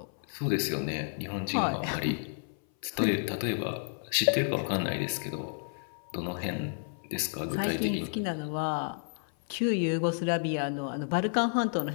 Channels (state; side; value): silent; right; 56 dB below the other